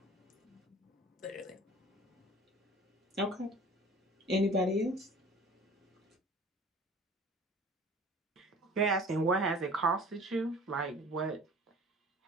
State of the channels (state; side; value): normal; both; correlation 0.45